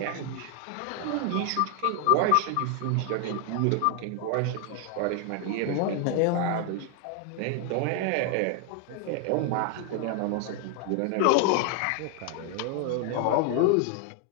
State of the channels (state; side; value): different; both; correlation 0.00